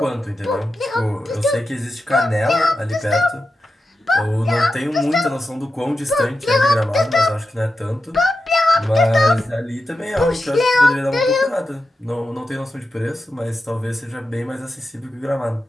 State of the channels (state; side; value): normal; both; correlation 0.90